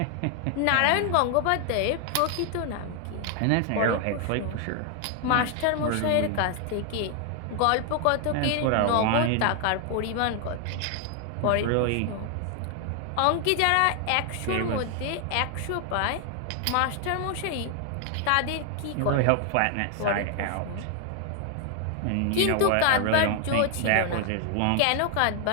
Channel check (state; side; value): different; both; correlation 0.00